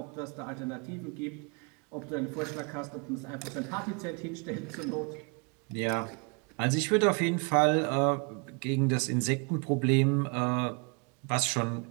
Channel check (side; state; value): left; quieter; 33.8 dB